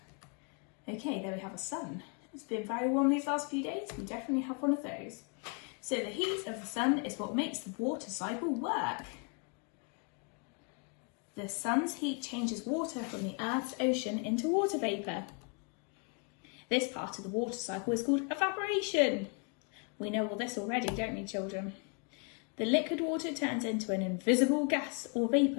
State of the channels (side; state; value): right; quieter; 36.3 dB